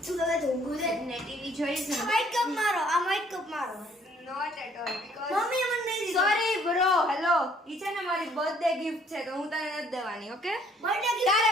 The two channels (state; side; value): normal; both; correlation 0.62